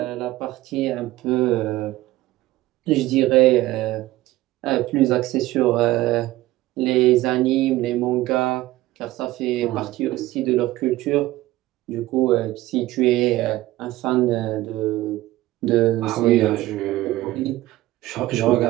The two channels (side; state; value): left; quieter; 16.9 dB